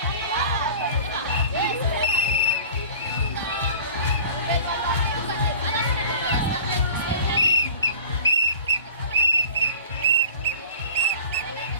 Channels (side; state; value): both; inverted; correlation -0.42